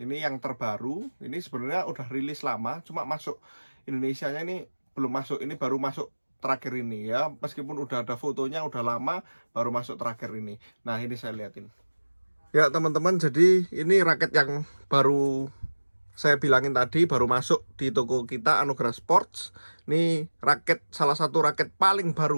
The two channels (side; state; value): both; inverted; correlation -1.00